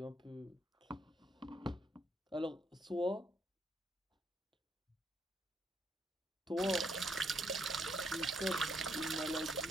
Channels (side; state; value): both; normal; correlation 0.73